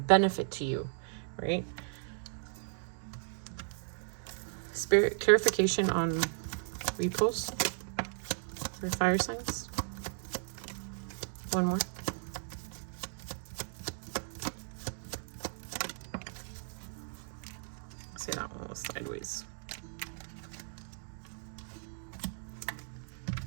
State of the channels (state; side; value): silent; left; digital silence